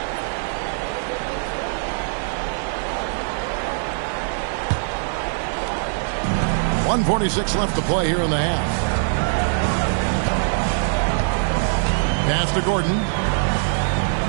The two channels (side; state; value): left; silent; 64 dB below the other